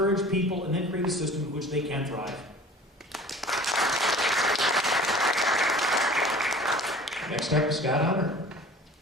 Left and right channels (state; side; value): normal; both; correlation 0.44